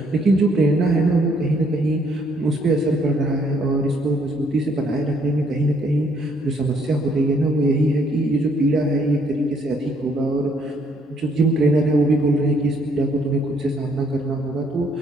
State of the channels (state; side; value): normal; both; correlation 0.67